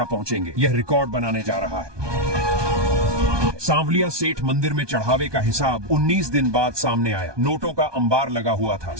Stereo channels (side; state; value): left; late; 1.2 ms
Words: पहुंचेंगे। यह रिकॉर्ड बनाने जा रहा है। सांवलिया सेठ मंदिर में चढ़ावे का हिसाब 19 दिन बाद सामने आया। नोटों का अंबार लगा हुआ था,